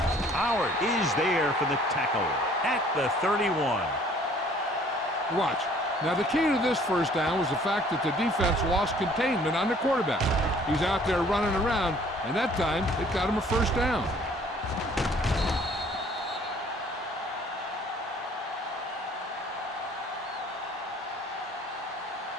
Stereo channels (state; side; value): normal; both; correlation 0.56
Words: Howard is there for the tackle at the 31. Watch. Now, the key to this first down was the fact that the defense lost containment on the quarterback. He's out there running around, and that time it got him a first down.